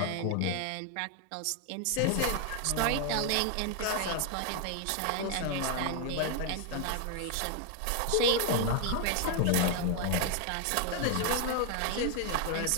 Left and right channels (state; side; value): different; both; correlation 0.00